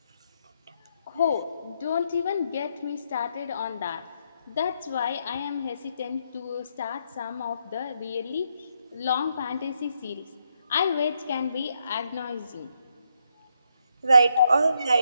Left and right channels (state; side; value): inverted; both; correlation -0.78